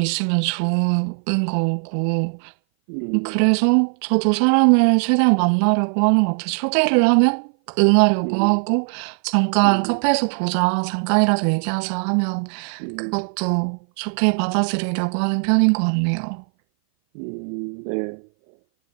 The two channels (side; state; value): left; silent; 59 dB below the other